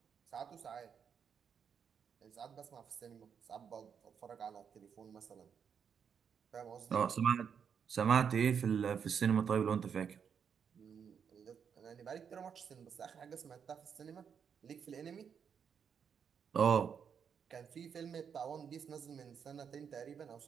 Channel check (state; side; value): quieter; left; 7.2 dB